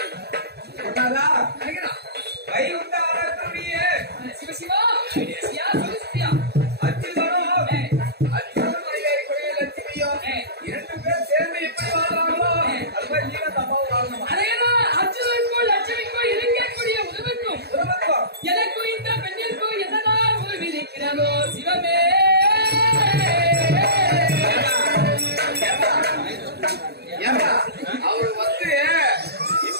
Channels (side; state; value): left; late; 0.47 ms